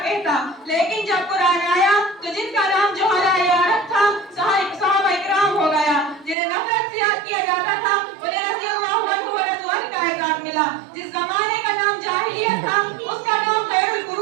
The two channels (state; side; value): drops out; left; at 6.4 s